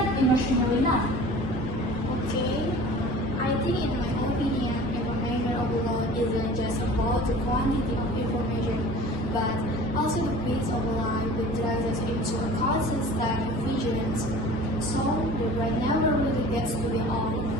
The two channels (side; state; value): both; normal; correlation 0.43